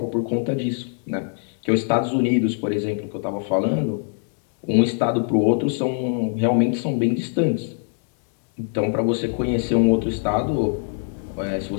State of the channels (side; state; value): right; silent; 63 dB below the other